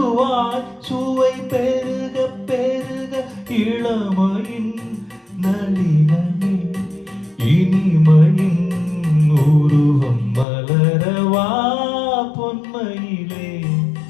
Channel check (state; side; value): drops out; right; at 10.5 s